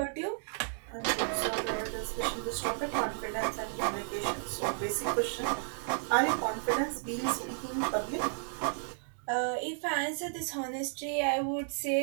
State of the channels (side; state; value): left; silent; digital silence